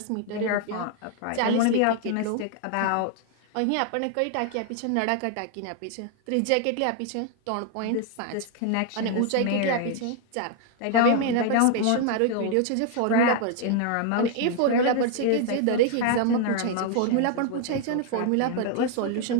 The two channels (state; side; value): different; both; correlation 0.00